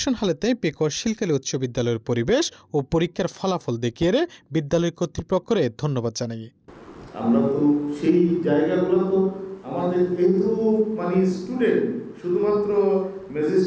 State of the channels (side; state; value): both; identical; correlation 1.00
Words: হালেতে পেকুয়া শিলকালী উচ্চ বিদ্যালয়ের পরিবেশ ও পরীক্ষার ফলাফল দেখিয়ে বিদ্যালয় কর্তৃপক্ষরে ধন্যবাদ জানাই। আমরা তো সেই জায়গাগুলো তো আমাদের কিন্তু মানে স্টুডেন্ট শুধুমাত্র